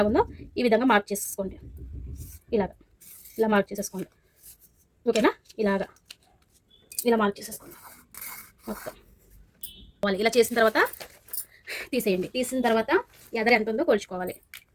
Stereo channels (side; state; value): both; identical; correlation 1.00